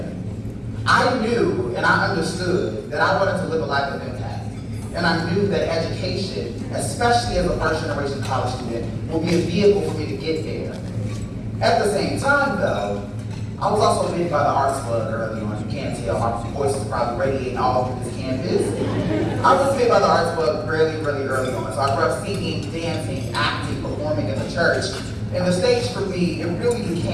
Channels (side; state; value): both; identical; correlation 1.00